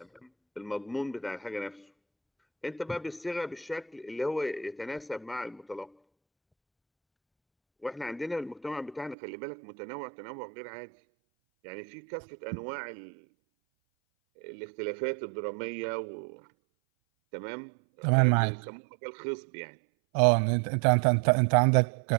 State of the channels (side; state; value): left; drops out; at 9.2 s